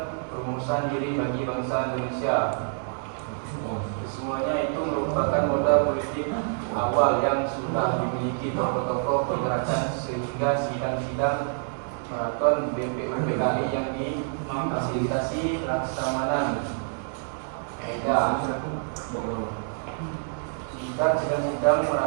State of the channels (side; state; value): left; silent; 60 dB below the other